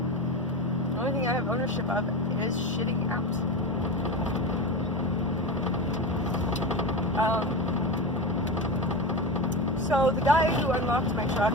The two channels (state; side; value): normal; both; correlation 0.23